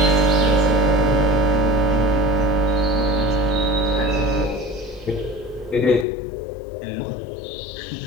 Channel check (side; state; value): right; drops out; at 6.1 s